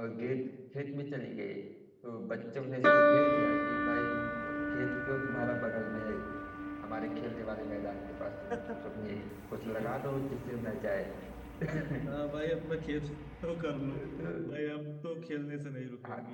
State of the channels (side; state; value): both; identical; correlation 1.00